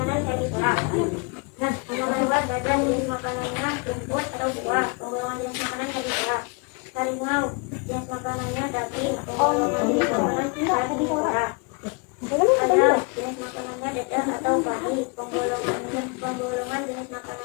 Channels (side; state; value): right; quieter; 32.8 dB